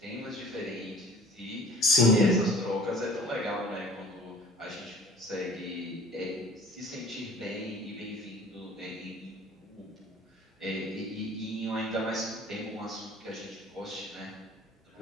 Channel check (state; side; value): normal; both; correlation 0.48